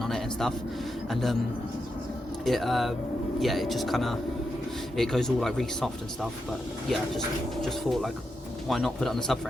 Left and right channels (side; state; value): both; normal; correlation 0.86